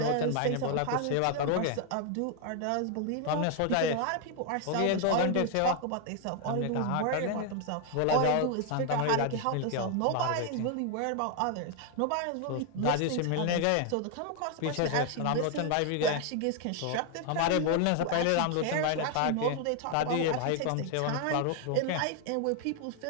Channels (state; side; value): different; both; correlation 0.00